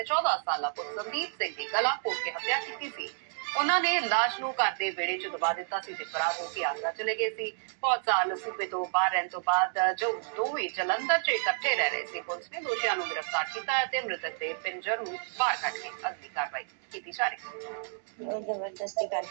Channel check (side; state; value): left; silent; digital silence